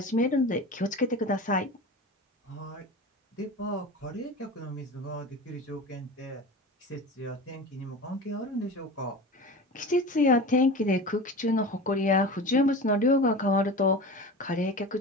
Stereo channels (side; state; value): both; normal; correlation 0.32